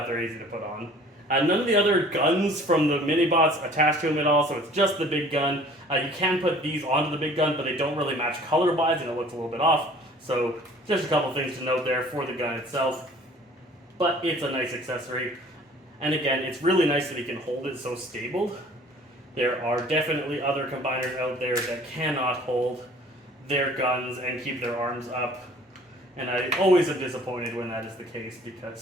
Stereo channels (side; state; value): both; normal; correlation 0.51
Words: they're easy to put on. None of the other guns from the mini-bots attach to him at all, so it's just the big gun. You can put these onto the big gun, but they don't really match color-wise, and it looks a little bit off. So just a couple things to note there for the gun itself. But it's a nice accessory. And again, it's really nice that he can hold it so stable. There are definitely other combiners out there that cannot hold their guns and keep their arms up. And I always am disappointed when that is the case